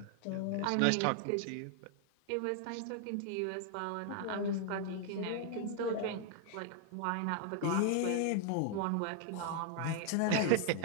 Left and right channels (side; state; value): both; different; correlation 0.00